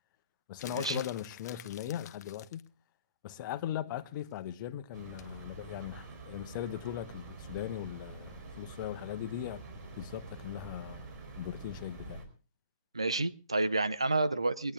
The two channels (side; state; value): both; inverted; correlation -0.59